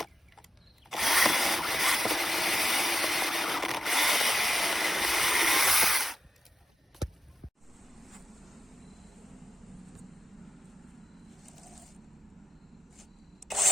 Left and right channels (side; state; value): both; normal; correlation 0.86